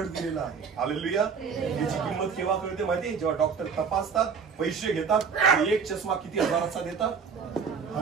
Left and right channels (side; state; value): left; quieter; 6.0 dB